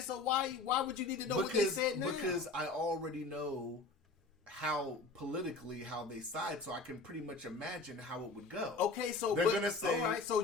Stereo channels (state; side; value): quieter; right; 3.6 dB